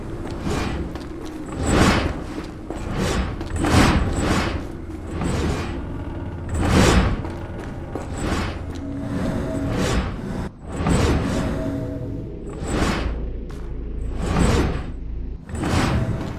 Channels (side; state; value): both; identical; correlation 1.00